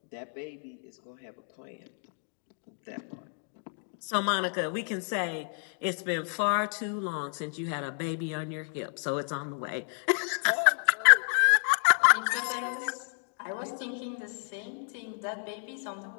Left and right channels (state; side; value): silent; right; 58 dB below the other